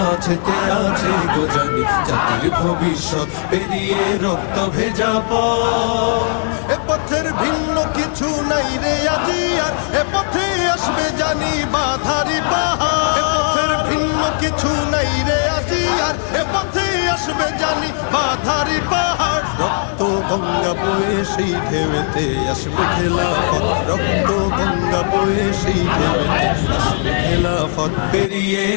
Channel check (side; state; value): right; silent; 65 dB below the other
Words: আছে গোজানি জাতির ভবিষ্যৎ। পেরিয়ে রক্ত ভেজা পথ, এ পথের ভিন্ন কিছু নাই রে আজি আর, এ পথে আসবে জানি বাধারি পাহাড়। এ পথের ভিন্ন কিছু নাই রে আজি আর, এ পথে আসবে জানি বাধারি পাহাড়। রক্ত গঙ্গা বয়ে সেই ঢেউতে আসবে খেলাফত, রক্ত গঙ্গা বয়ে সেই ঢেউতে আসবে খেলাফত। পেরিয়ে